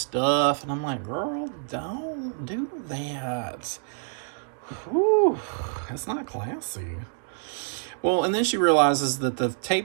and I'm like, girl, don't do that. Whew, that's not classy. Well, and then she realizes that the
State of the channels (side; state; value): left; silent; digital silence